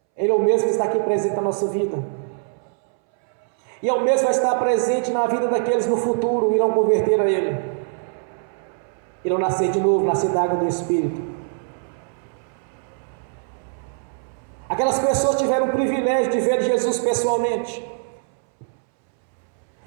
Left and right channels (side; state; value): left; silent; 64 dB below the other